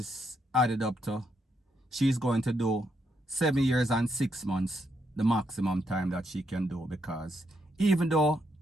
added up to, she's going to do 7 years and 6 months, the maximum time that she can do, because even though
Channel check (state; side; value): normal; both; correlation 0.77